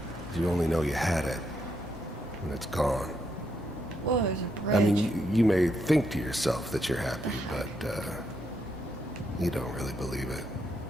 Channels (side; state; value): both; normal; correlation 0.78